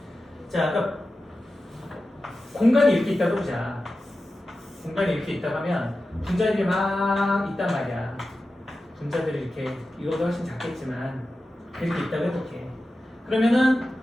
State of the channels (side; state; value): both; normal; correlation 0.93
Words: 자, 그러니까 공간이 이렇게 있다고 보자. 공간이 이렇게 있다고 하면 분자들이 막 있단 말이야. 분자들이 이렇게, 이거보다 훨씬 작겠지만 이렇게 있다고 해볼게. 그러면은